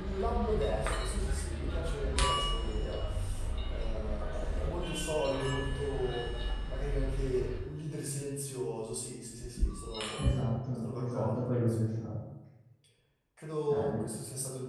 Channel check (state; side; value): identical; both; correlation 1.00